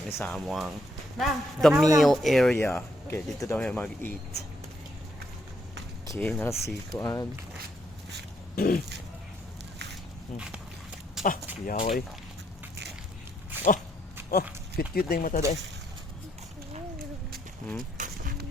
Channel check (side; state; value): both; normal; correlation 0.74